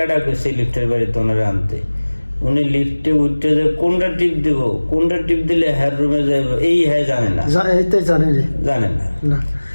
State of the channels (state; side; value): inverted; both; correlation -1.00